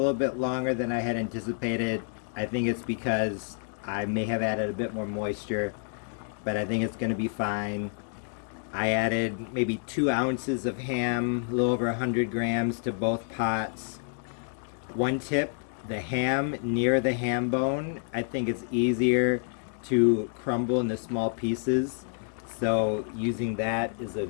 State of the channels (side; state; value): right; silent; 59 dB below the other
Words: bit longer than I had anticipated. I think it's because I may have added a bit more moisture, but I think it's going to be fine. I added maybe 2 ounces of ham, a little over 100 grams to both pots. One tip, the ham near the ham bone, I think it's easier to crumble into small pieces, so using that is a